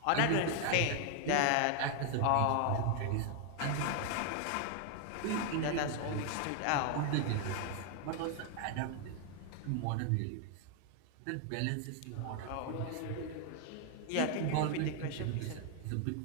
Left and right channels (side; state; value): both; different; correlation 0.00